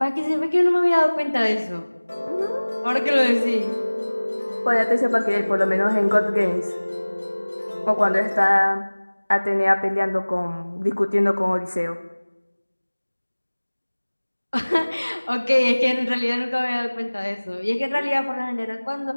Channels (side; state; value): both; inverted; correlation -1.00